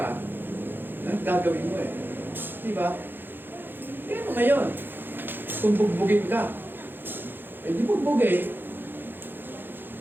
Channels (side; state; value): left; late; 0.098 ms